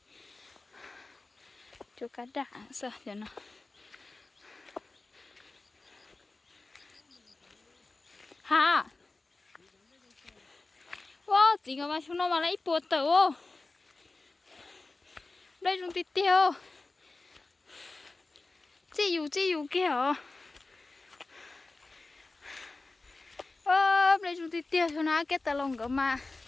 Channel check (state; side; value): quieter; right; 3.4 dB